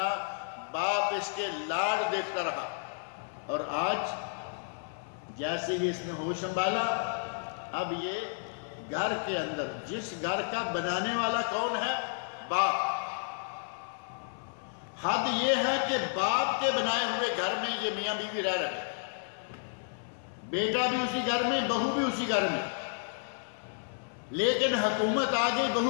باپ اس کے لاڈ دیکھتا رہا، اور آج جیسے ہی اس نے ہوش سنبھالا، اب یہ گھر کے اندر، جس گھر کا بنانے والا کون ہے؟ باپ۔ حد یہ ہے کہ باپ کے بنائے ہوئے گھر میں یہ میاں بیوی رہ رہے، بیٹا بھی اسی گھر میں، بہو بھی اسی گھر میں، لیکن حکومت آ گئی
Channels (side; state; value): right; silent; 57 dB below the other